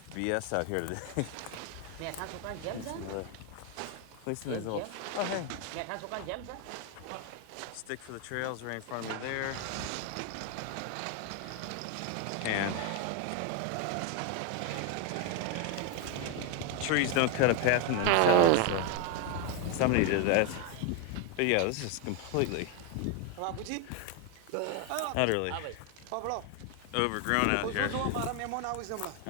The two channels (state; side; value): different; both; correlation 0.01